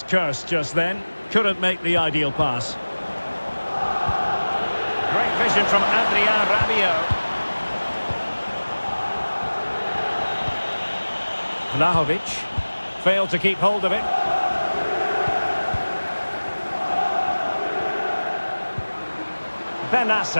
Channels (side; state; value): both; inverted; correlation -1.00